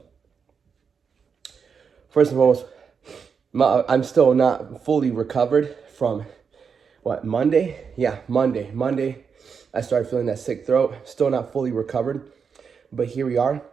first and foremost, I'm still not fully recovered from, Monday? Yeah, Monday. Monday, I started feeling that sick throat. Still not fully recovered, but here we are.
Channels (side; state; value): left; quieter; 6.2 dB